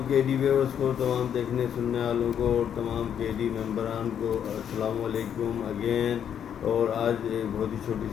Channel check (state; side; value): quieter; right; 8.8 dB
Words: کے ڈی ویورس کو، تمام دیکھنے سننے والوں کو اور تمام کے ڈی ممبران کو السلام علیکم اگین۔ اور آج ایک بہت ہی چھوٹی